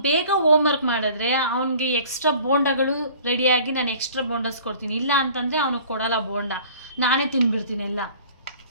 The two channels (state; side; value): inverted; both; correlation -0.48